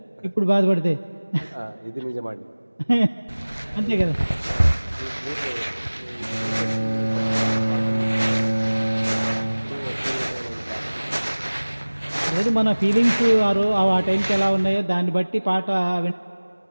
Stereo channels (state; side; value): inverted; both; correlation -1.00